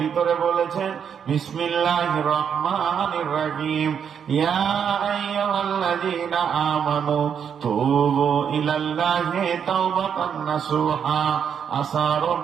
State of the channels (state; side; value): quieter; left; 7.7 dB